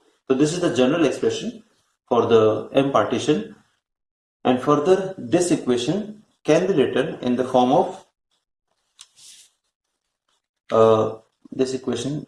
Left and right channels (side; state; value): both; identical; correlation 1.00